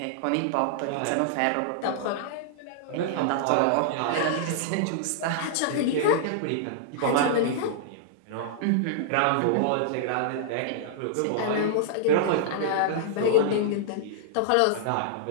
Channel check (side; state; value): both; different; correlation -0.01